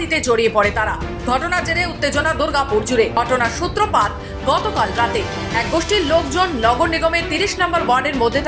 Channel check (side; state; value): both; identical; correlation 1.00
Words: জড়িয়ে পড়ে তারা। ঘটনার জেরে উত্তেজনা দুর্গাপুর জুড়ে। ঘটনার সূত্রপাত গতকাল রাতে। এক গোষ্ঠীর লোকজন নগর নিগমের 30 নম্বর ওয়ার্ডের মধ্যে